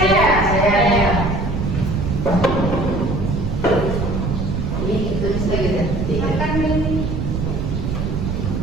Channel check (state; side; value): noise; right; rumble, 2 dB below the sound